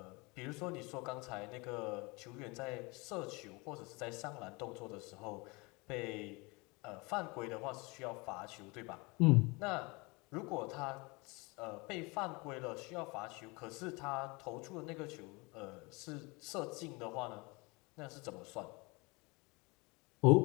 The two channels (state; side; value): quieter; right; 26.9 dB